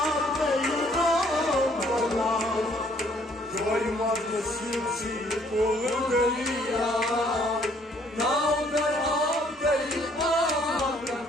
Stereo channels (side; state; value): both; normal; correlation 0.63